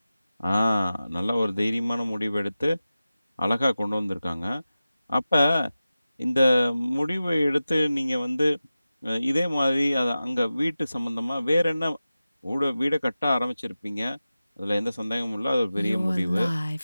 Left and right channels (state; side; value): inverted; both; correlation -0.94